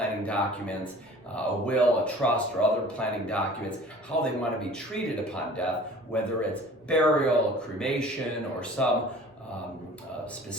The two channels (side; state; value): both; normal; correlation 0.46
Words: documents, a will, a trust, or other planning documents, how they want to be treated upon death, whether it's burial, cremation, or some